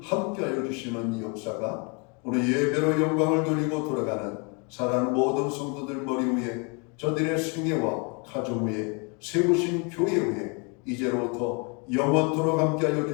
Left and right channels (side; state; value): right; quieter; 33.6 dB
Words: 함께하여 주시는 이 역사가 오늘 예배로 영광을 돌리고 돌아가는 사랑하는 모든 성도들 머리 위에 저들의 생애와 가정 위에 세우신 교회 위에 이제로부터 영원토록 함께하여